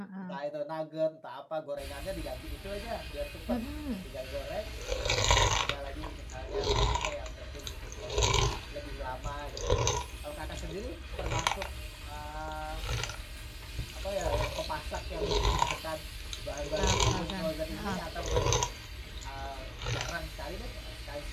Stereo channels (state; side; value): identical; both; correlation 1.00